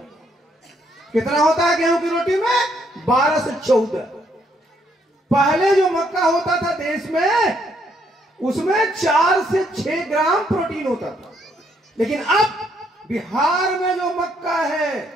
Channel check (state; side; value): normal; both; correlation 0.71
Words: कितना होता है गेहूं की रोटी में? 12 से 14। पहले जो मक्का होता था देश में, उसमें 4 से 6 ग्राम प्रोटीन होता था। लेकिन अब बिहार में जो मक्का है,